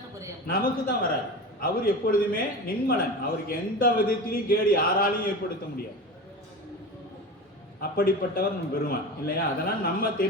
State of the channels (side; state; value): both; normal; correlation 0.29